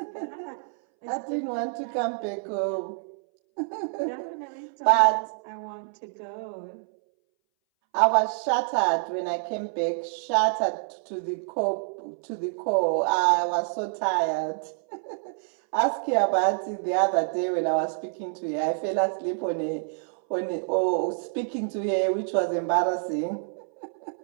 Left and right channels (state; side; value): silent; left; 60 dB below the other